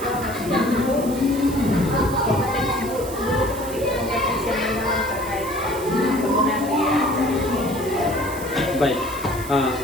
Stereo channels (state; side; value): noise; right; hiss, 14 dB below the sound